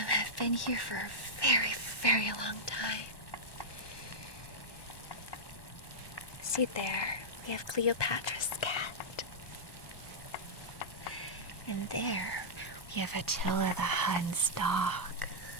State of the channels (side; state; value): right; late; 1.1 ms